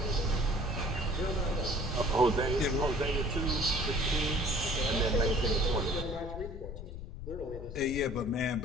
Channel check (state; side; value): noise; left; rumble, 9 dB below the sound